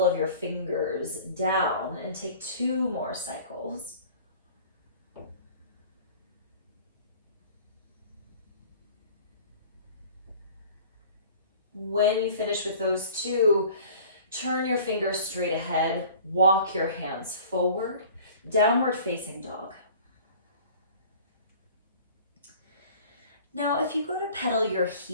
of your fingers down and take 2 more cycles. When you finish with those 2, turn your fingers straight ahead, walk your hands forward, downward facing dog. Now, if you go to pedal your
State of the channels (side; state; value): both; inverted; correlation -0.46